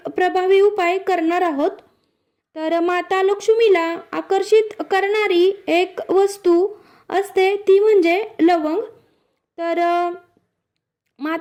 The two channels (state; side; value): identical; both; correlation 1.00